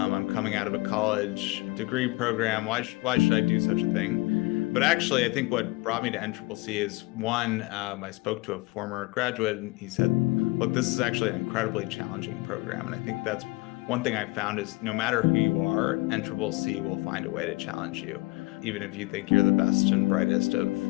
coming out of a college degree program. Why should I do such a thing? But actually, I think what brought me to NCCC is one, I spoke to a former graduate and he said, look, this is actually an incredibly challenging program. And I think that's one thing I found is no matter who you are, NCCC will find a way to challenge you, even if you think you're the best and brightest of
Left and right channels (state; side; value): quieter; right; 23.9 dB